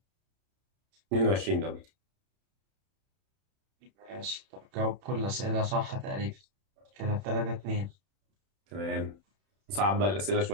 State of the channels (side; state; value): left; late; 31 ms